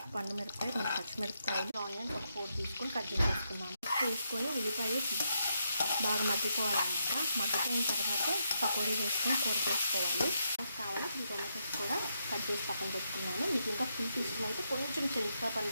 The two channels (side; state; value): both; inverted; correlation -0.80